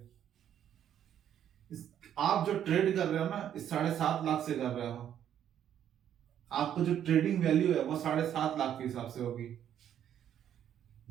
आप जो ट्रेड कर रहे हो ना, इस 7.5 लाख से कर रहे हो, आपको जो ट्रेडिंग वैल्यू है वो 7.5 लाख के हिसाब से होगी।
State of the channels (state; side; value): quieter; left; 10.0 dB